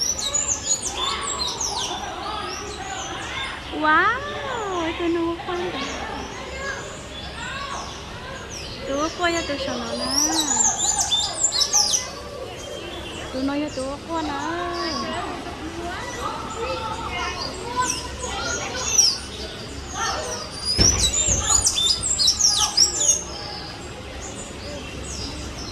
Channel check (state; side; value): identical; both; correlation 1.00